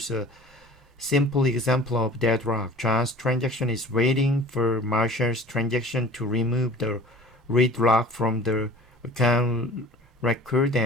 a simple example of deadlock. John's transaction is waiting for Marshall's transaction to remove the read log from the account record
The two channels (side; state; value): both; normal; correlation 0.44